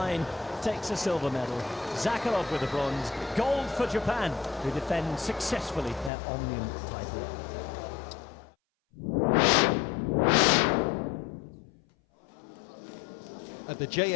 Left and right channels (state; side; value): drops out; right; at 6.1 s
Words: takes a silver medal. Zakharov with the bronze. Gold for Japan, who defend successfully their Omnium title. At the